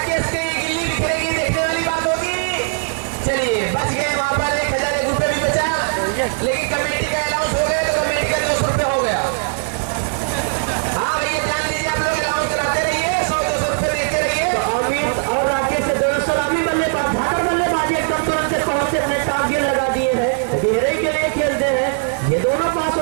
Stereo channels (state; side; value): silent; left; digital silence